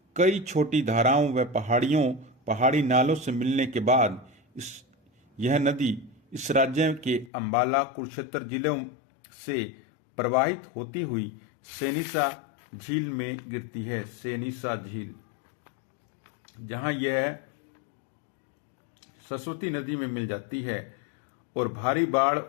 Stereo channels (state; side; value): drops out; right; at 7.3 s